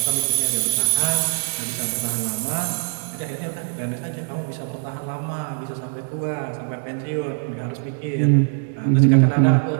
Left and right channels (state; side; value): silent; left; 64 dB below the other